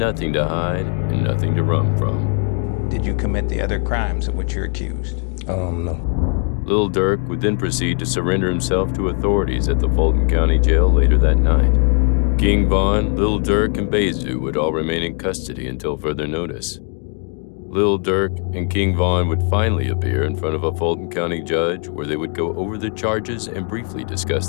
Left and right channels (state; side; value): quieter; right; 38.8 dB